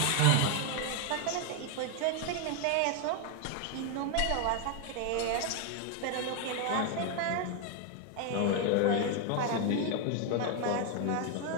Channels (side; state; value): both; different; correlation 0.00